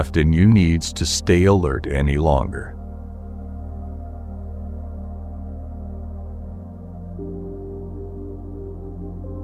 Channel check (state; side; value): identical; both; correlation 1.00